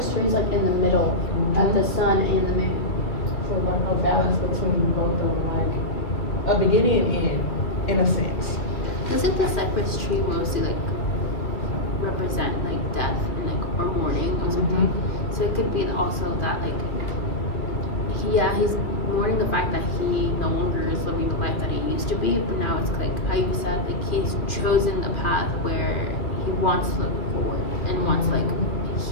tree is in the middle of the sun and the moon. So a balance between both of them, a beginning and end, in a sense. Doesn't the cypress tree mostly represent death and or mourning or something? So it could be also that he's mourning the fact that he no longer is living the life that he used to be, but now it's how you said he's chosen a path where he wants to look forward and wants to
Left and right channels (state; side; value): late; right; 2.4 ms